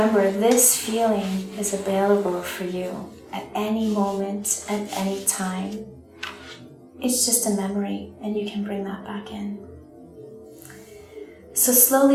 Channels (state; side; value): identical; both; correlation 1.00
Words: this feeling is available for you at any moment, at any time. It's just a memory, and you can bring that back in. So